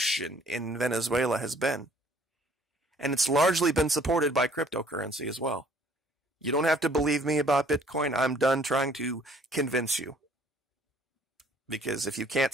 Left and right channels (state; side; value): normal; both; correlation 0.58